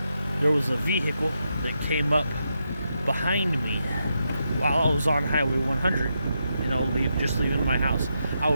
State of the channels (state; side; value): inverted; both; correlation -0.84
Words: vehicle that came up behind me while I was on Highway 100. Just leaving my house. I